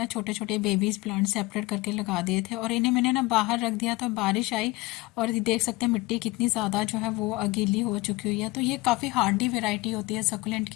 छोटे छोटे बेबीज प्लांट सेपरेट करके लगा दिए थे, और इन्हें मैंने ना बाहर रख दिया तो बारिश आई और देख सकते हैं मिट्टी कितनी ज़्यादा जो है वो गीली हो चुकी हुई है। तो ये काफ़ी हार्डी वेराइटी होती है सकुलेंट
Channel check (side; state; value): right; quieter; 21.1 dB